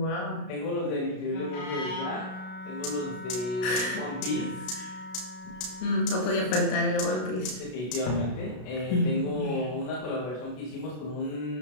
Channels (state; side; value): late; right; 32 ms